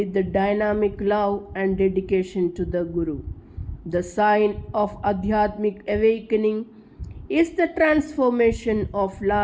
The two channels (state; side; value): identical; both; correlation 1.00